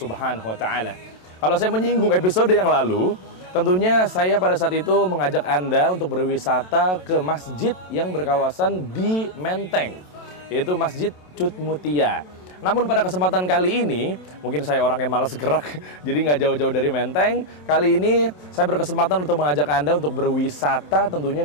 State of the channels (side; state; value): right; late; 27 ms